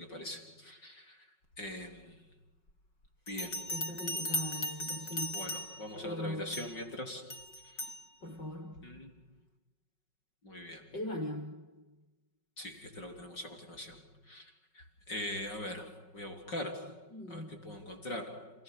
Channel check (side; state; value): right; late; 5.4 ms